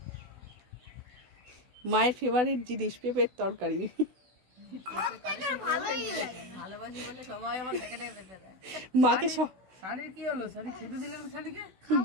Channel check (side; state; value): left; late; 16 ms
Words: মায়ের ফেভারিট জিনিস পেঁপের তরকারি। ভালোবাসি বলে সবাই আমার ডেকে ডেকে পেঁপে দেয়। মাকে সানির কি হলো? সানি খেতে দিলেন সানিকে?